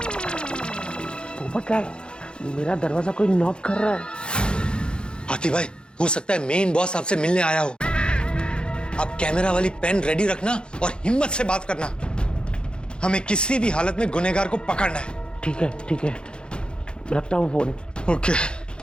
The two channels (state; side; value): late; right; 0.051 ms